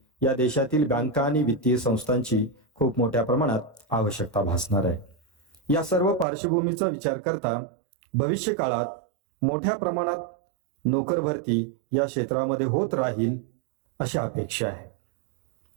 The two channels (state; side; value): drops out; left; at 6.2 s